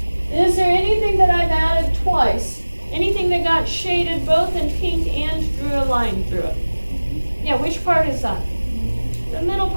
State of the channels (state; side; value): inverted; both; correlation -1.00